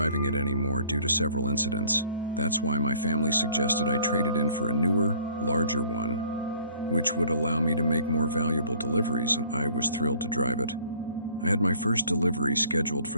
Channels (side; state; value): both; inverted; correlation -0.56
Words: it anymore due to several incidents. That's why my family suggested I trade it in for a newer, larger one, which would allow me to make more valuable deliveries, and I was thrilled to drive it. I had my first delivery scheduled